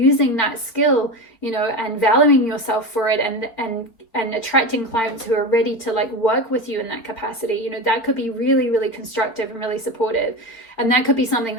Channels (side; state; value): right; late; 4.1 ms